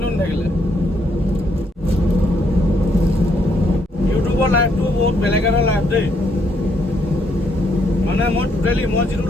থাকিলে। ইউটিউবৰ লাইফটো বহুত বেলেগ এটা লাইফ দেই। মানে মই যিটো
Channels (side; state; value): both; normal; correlation 0.73